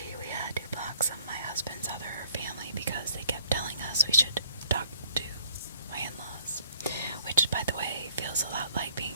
we had to block some of my husband's other family because they kept telling us we should talk to my in-laws, which, by the way, feels a lot like being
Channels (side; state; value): both; inverted; correlation -0.62